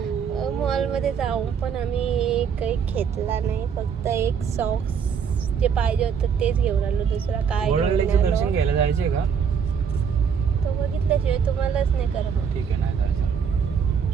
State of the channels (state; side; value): quieter; left; 6.9 dB